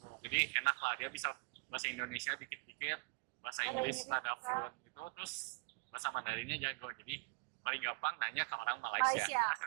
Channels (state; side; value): quieter; left; 29.6 dB